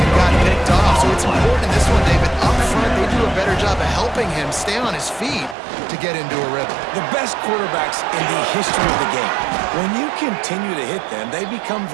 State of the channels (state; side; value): drops out; left; at 5.6 s